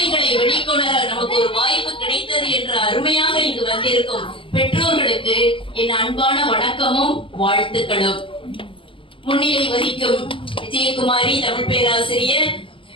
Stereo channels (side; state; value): right; late; 0.25 ms